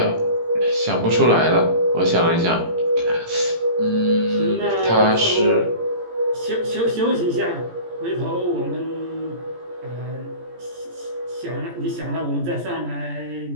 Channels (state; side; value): late; left; 17 ms